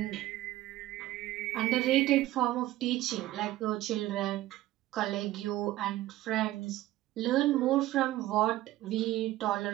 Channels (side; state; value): left; quieter; 15.8 dB